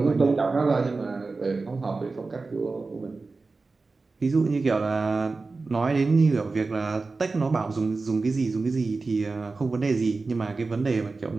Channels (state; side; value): quieter; left; 3.9 dB